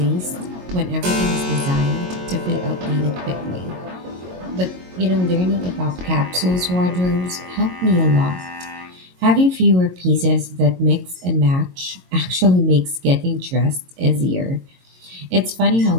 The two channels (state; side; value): late; left; 22 ms